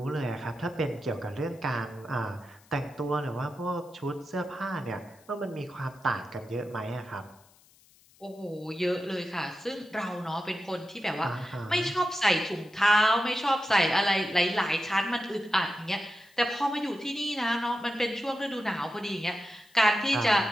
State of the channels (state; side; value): noise; left; hiss, 29 dB below the sound